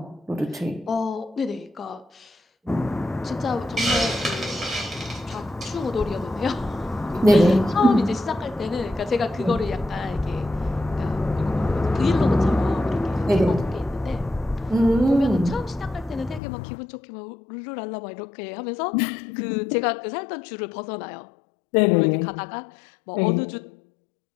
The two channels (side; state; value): right; drops out; at 16.4 s